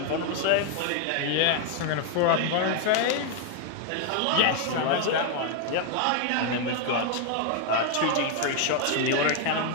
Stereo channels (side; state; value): both; different; correlation 0.00